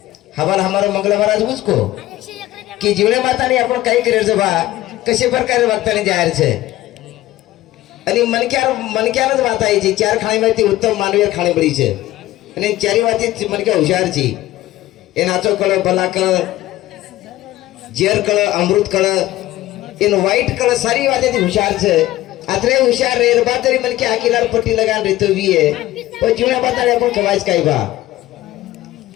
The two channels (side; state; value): right; quieter; 16.0 dB